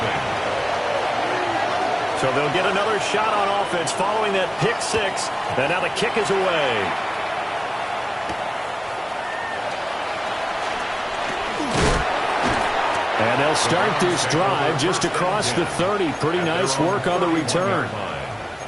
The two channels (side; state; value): both; identical; correlation 1.00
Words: So they'll get another shot on offense following that pick 6. And now the kick is away. And they'll start this drive just across the 30. Pretty nice work on the return.